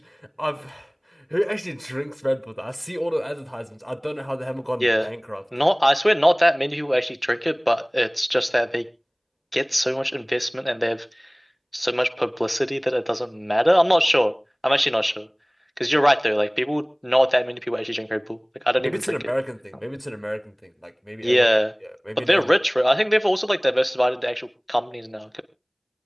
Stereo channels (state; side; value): identical; both; correlation 1.00